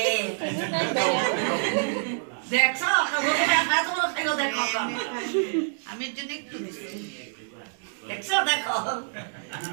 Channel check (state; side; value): silent; left; digital silence